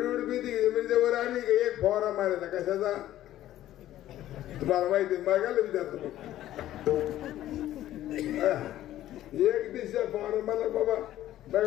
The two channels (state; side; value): quieter; right; 13.4 dB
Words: मेथी म्हणजे वर आली का एक फवारा मारायचा कशाचा तुम्हाला माहिती? मागायला विचारतो एक दिवशी फवारा मला बाबा